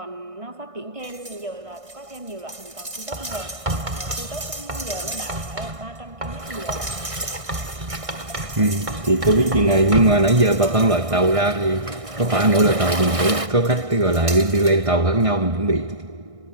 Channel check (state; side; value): late; left; 1.6 ms